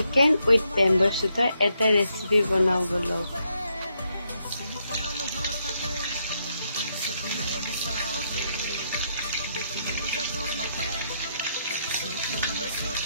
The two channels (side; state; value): both; inverted; correlation -0.78